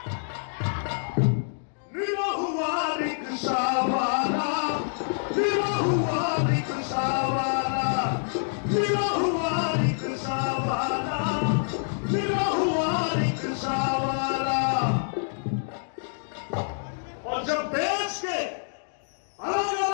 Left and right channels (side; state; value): right; silent; digital silence